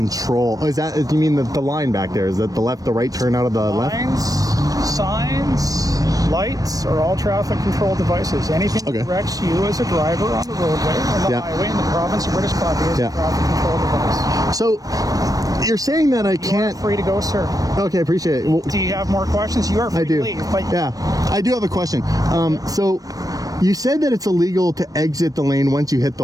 Oh, is that, you mean the line back there? Is that the left, the right turn out of the left? Lines, signs, lights are all traffic control devices. Anything that directs you as a driver on the roadway, on the highway in the province of British Columbia is a traffic control device. So you're saying that I can't... You're free to go, sir. Okay, appreciate it. Well, do you have more questions? You are free to leave. But yeah, I do have a question. So you said that it's illegal to exit the lane once you hit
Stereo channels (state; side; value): late; left; 0.18 ms